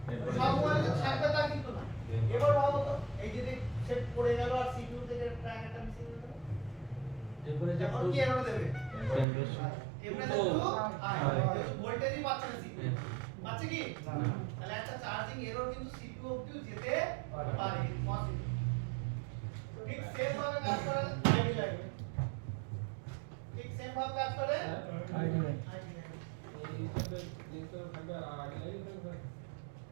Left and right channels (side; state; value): left; drops out; at 9.2 s